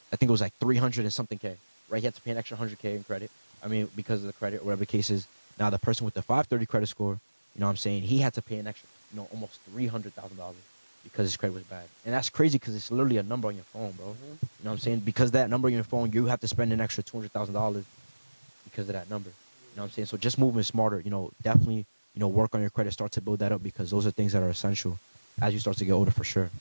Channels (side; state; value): both; inverted; correlation -1.00